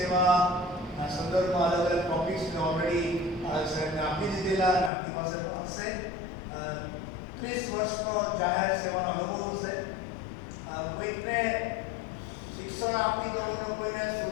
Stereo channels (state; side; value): drops out; right; at 4.9 s